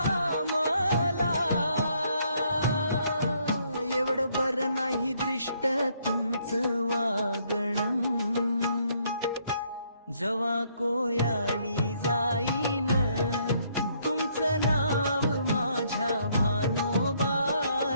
मला. एवढं बरं नाही दृष्ट तुमचं वागणं, जवा कोयाळी जाईन तुमचं नाव माझ्या भानोबा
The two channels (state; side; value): inverted; both; correlation -0.69